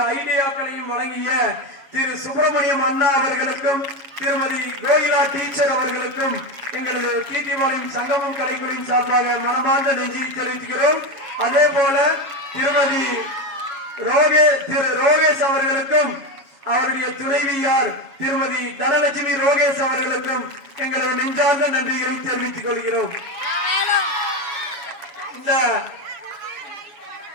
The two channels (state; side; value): late; left; 7.2 ms